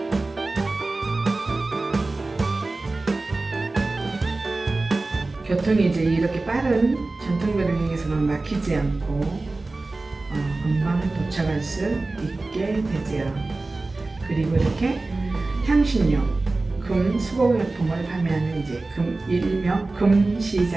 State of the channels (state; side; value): quieter; left; 3.3 dB